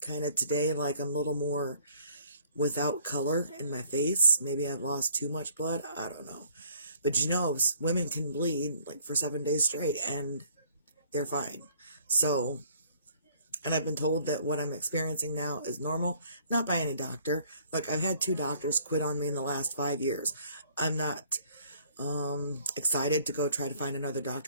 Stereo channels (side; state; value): both; inverted; correlation -0.59